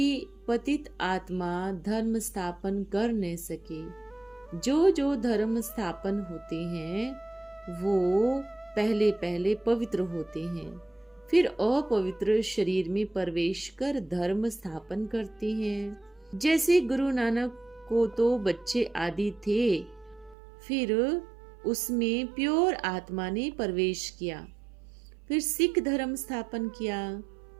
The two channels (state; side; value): drops out; left; at 20.4 s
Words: पतित आत्मा धर्म स्थापन कर न सके। जो धर्म स्थापन होते हैं वो पहले पहले पवित्र होते हैं, फिर अपवित्र शरीर में प्रवेश कर धर्म स्थापन करते हैं। जैसे गुरु नानक को तो बच्चे आदि थे, फिर उसमें प्योर आत्मा ने प्रवेश किया, फिर सिख धर्म स्थापन किया।